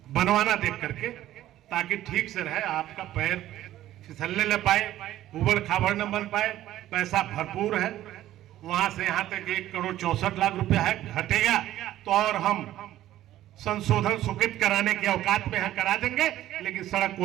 बनवाना देख करके, ताकि ठीक से रहे, आपका पैर फिसलने न पाए, उबड़ खाबड़ न बन पाए। पैसा भरपूर है, वहां से यहां तक 1,64,00,000 रुपया है, घटेगा तो और हम संशोधन स्वीकृत कराने के औकात में है, करा देंगे। लेकिन सड़क को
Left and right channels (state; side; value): quieter; left; 13.6 dB